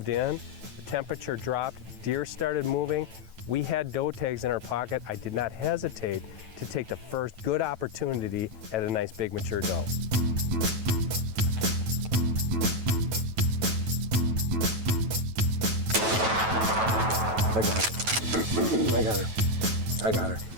in, the temperature dropped, deer started moving. We had doe tags in our pocket. I did not hesitate to take the first good opportunity at a nice big mature doe. I got her. I got her. I got her.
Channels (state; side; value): late; left; 9.2 ms